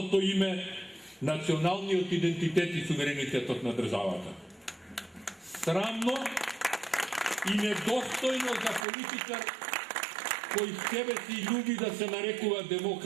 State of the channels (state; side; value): drops out; left; at 8.8 s